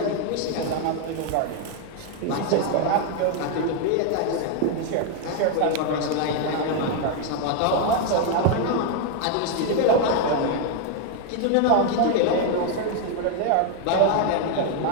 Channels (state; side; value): different; both; correlation 0.01